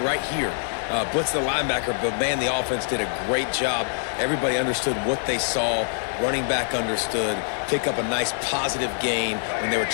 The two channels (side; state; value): right; silent; 62 dB below the other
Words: here, blitz the linebacker, but man, the offense did a great job. Everybody understood what they saw. Running back understood. Pick up a nice positive gain when they were